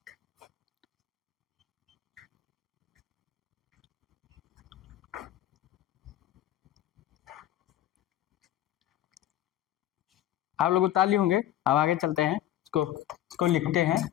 आप लोग उतार लिए होंगे, अब आगे चलते हैं, इसको लिखते हैं,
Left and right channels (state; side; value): quieter; right; 12.8 dB